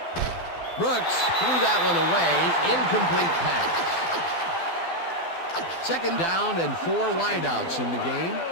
Brooks threw that one away. Incomplete pass. Second down and 4 wideouts in the game.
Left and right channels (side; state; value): right; late; 12 ms